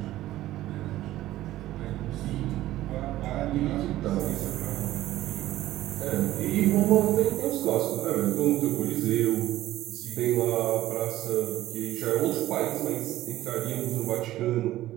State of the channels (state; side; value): quieter; left; 15.0 dB